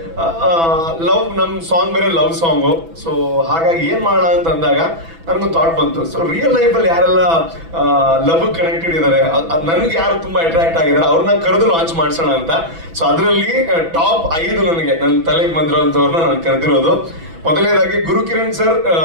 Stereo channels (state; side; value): late; left; 6.0 ms